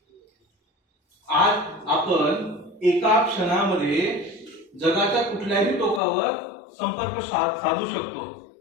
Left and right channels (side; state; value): right; drops out; at 6.0 s